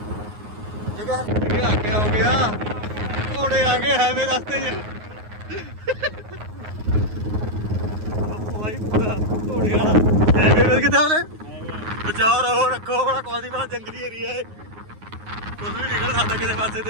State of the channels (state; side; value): late; left; 9.5 ms